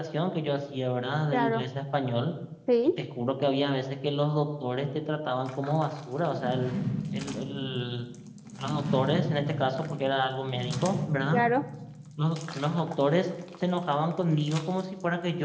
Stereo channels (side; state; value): both; identical; correlation 1.00